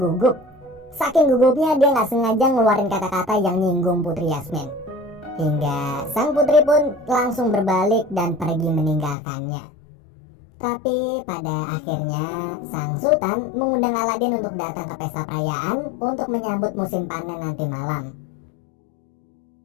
Saking gugupnya dia gak sengaja ngeluarin kata-kata yang nyinggung Putri Yasmin. Hingga sang putri pun langsung berbalik dan pergi meninggalkannya. Tapi pada akhirnya sang sultan mengundang Aladin untuk datang ke pesta perayaan untuk menyambut musim panen nanti malam.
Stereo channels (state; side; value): drops out; right; at 9.2 s